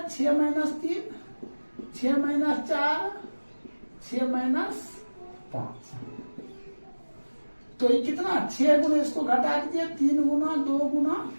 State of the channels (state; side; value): inverted; both; correlation -1.00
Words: 6 माइनस 3 6 माइनस 4 6 माइनस 5। तो ये कितना 6 गुना इसको घटा दीजिए 3 गुना 2 गुना